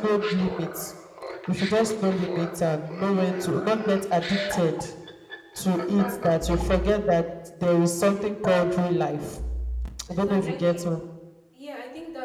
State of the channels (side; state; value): both; identical; correlation 1.00